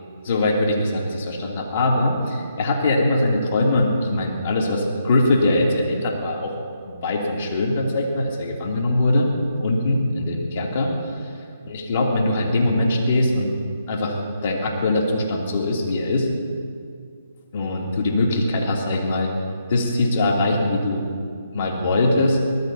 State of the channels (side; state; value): both; inverted; correlation -0.79